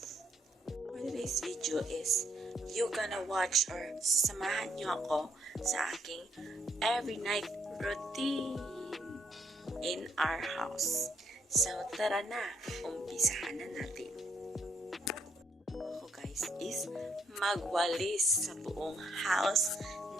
For today's video is, you gonna watch or samahan nyo ako sa aking every night routine in our house. So, tara na! Umpisahan na natin. Ako guys is magwalis sa buong house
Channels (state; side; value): normal; both; correlation 0.71